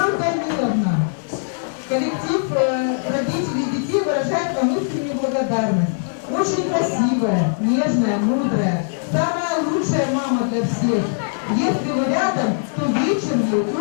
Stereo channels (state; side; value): silent; right; digital silence